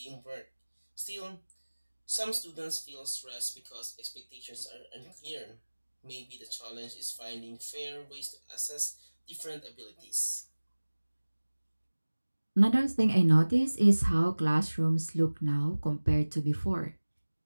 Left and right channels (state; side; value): inverted; both; correlation -1.00